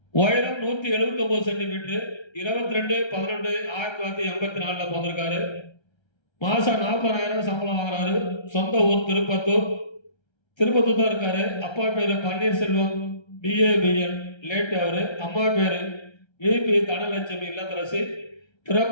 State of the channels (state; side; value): late; right; 1.3 ms